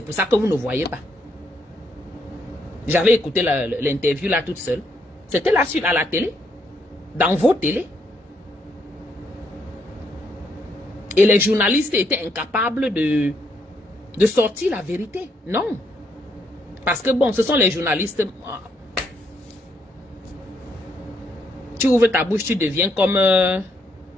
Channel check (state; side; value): normal; both; correlation 0.75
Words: ça que vous ne voyez pas. J'avais écouté l'interview là toute seule. C'était là à la télé, dans vos télés. Et les journalistes étaient incapables de sortir la vérité. Non. Parce que bon, ce sont les journalistes. Tu ouvres ta bouche, tu deviens comme